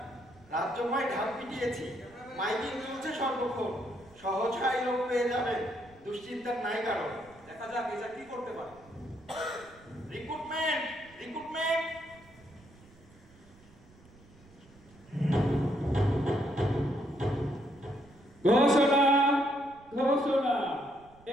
রাজ্যময় ঢাক পিটিয়েছি, মাইকিং চলছে সর্বক্ষণ, সহজ হয় লোক পেয়ে যাবে, দুশ্চিন্তার নাই কারণ। দেখা যাক এটা কি করতে পারে। Recruitment, recruitment. ঘোষণা, ঘোষণা,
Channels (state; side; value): noise; right; rumble, 25 dB below the sound